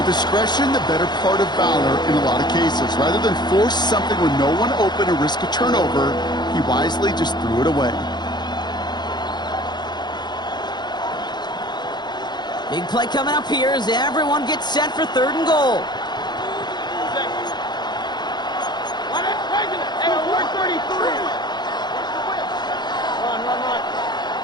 discretion, the better part of valor in a lot of cases. Rather than force something with no one open and risk a turnover, he wisely just threw it away. Big play coming up here as everyone gets set for 3rd and goal. Hey, alert 33. Run.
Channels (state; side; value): late; right; 0.21 ms